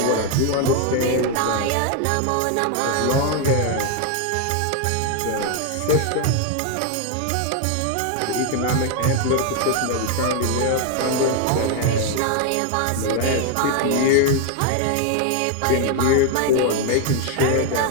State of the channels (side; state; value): both; different; correlation 0.00